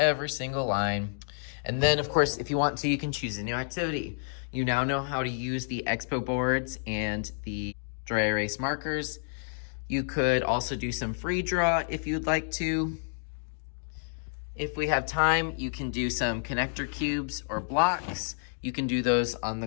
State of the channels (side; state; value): right; silent; digital silence